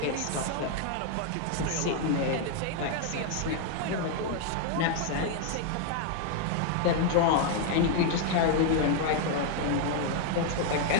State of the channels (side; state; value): both; different; correlation 0.00